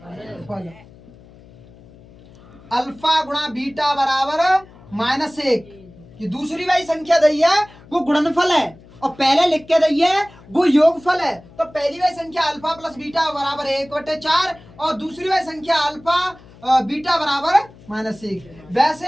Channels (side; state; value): left; noise; hum, 23 dB below the sound